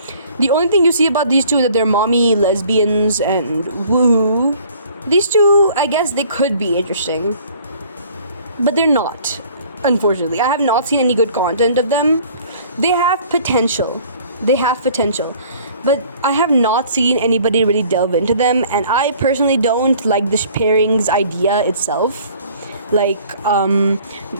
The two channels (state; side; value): inverted; both; correlation -0.53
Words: The only thing you see about these two is that they're mommy lesbians and woohoo. These two, I guess they could be interesting, but they're not, unfortunately. I have not seen any good content of them. They have potential, but I have not seen anybody really delve into them, and I personally don't like the pairings idea itself. Like,